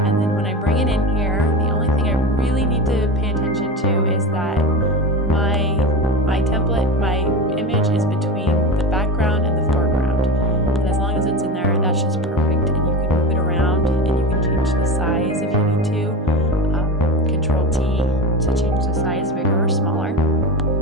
And then when I bring it in here, the only thing I really need to pay attention to is that my template, my image is between the background and the foreground. And as long as it's in there, that's just perfect. And you can move it around, and you can change the size if you need to. Control T to change the size bigger or smaller.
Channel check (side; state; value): both; normal; correlation 0.22